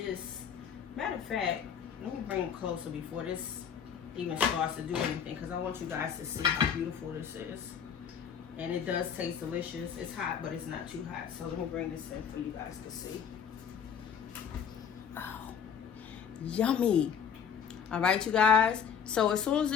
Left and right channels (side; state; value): right; quieter; 7.5 dB